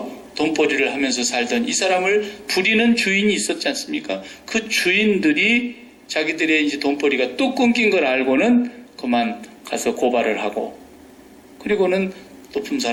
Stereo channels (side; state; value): both; identical; correlation 1.00